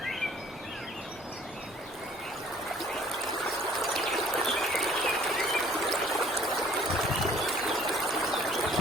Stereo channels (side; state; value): both; normal; correlation 0.55